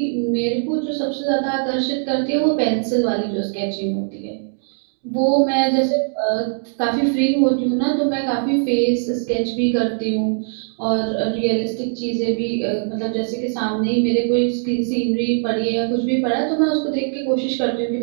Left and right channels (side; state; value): left; silent; digital silence